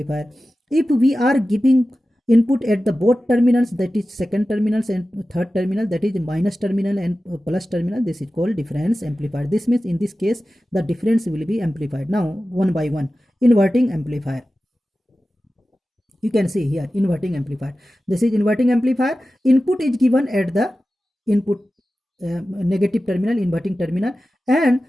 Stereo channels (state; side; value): normal; both; correlation 0.94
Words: If we are giving input at the both terminals, that is second terminals and third terminal, that is minus terminal and plus terminal, this is called difference amplifier. This means in this case the difference will be amplified. Now one by one. Inverting amplifier, you can see here inverting amplifier. This is inverting amplifier. Input is given at the input negative terminal, inverting terminal, and